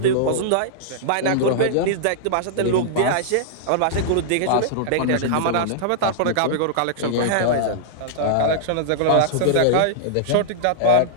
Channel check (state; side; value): different; both; correlation -0.01